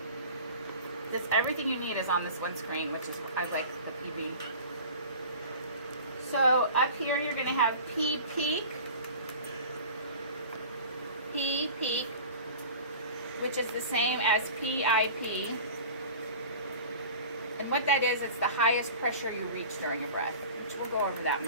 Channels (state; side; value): inverted; both; correlation -0.39